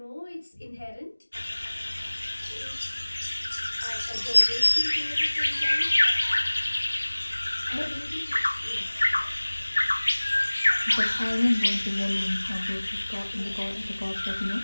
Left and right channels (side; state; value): both; inverted; correlation -1.00